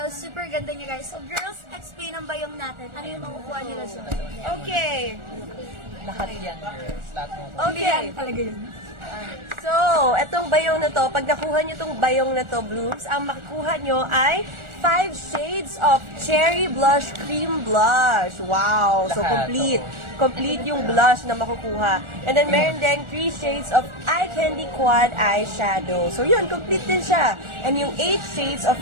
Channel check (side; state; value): left; late; 1.4 ms